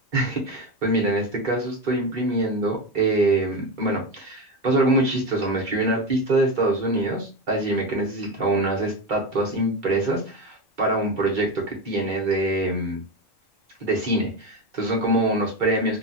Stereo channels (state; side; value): normal; both; correlation 0.18